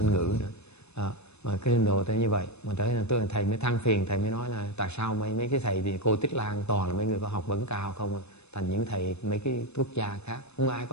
ngữ nữa. Mà cái trình độ tới như vậy, mà tới là tôi thầy mới than phiền, thầy mới nói là tại sao mấy cái thầy thì cô Tích Lan toàn là mấy người có học vấn cao không, thành những thầy mấy cái quốc gia khác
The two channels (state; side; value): late; right; 0.80 ms